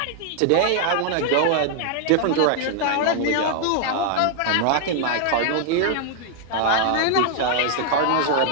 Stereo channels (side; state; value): both; different; correlation 0.00